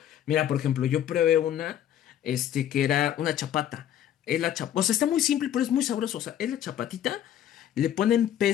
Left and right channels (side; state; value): right; quieter; 10.8 dB